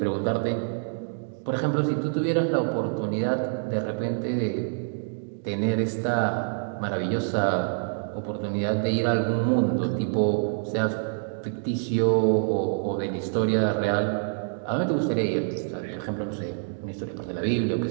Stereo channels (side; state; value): left; silent; digital silence